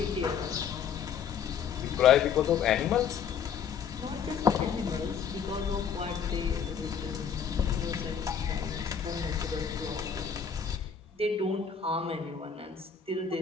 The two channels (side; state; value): right; quieter; 7.2 dB